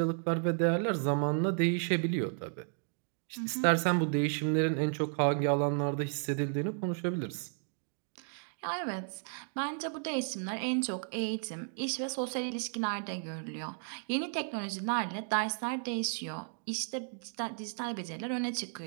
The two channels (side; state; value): left; silent; 55 dB below the other